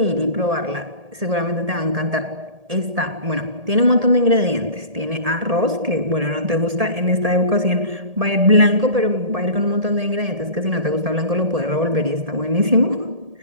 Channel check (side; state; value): left; late; 1.8 ms